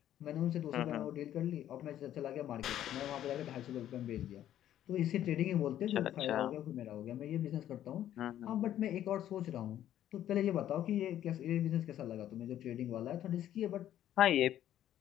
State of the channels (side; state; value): right; quieter; 11.7 dB